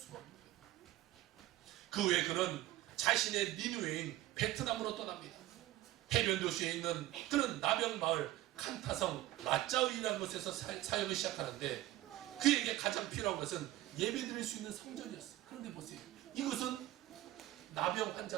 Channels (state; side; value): quieter; left; 15.6 dB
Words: 없는 거예요. 그 후에 그는 자신의 니누에인 베트남으로 떠납니다. 해변 도시에 있는 그는 나병 마을 칸타성 라짜우이라는 곳에서 사역을 시작하는데 그에게 가장 필요한 것은 예배드릴 수 있는 성전이었어요. 그런데 보세요. 이것은 나병